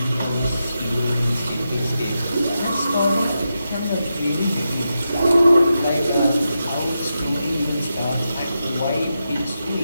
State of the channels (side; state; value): both; inverted; correlation -0.88